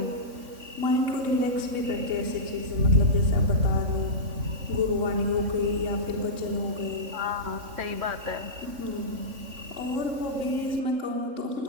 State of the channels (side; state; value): left; late; 3.5 ms